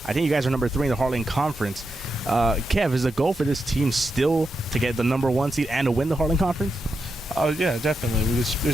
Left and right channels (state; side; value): normal; both; correlation 0.86